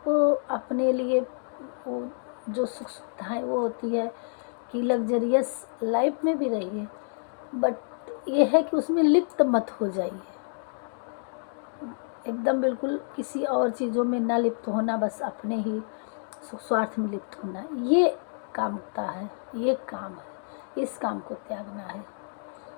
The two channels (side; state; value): right; silent; digital silence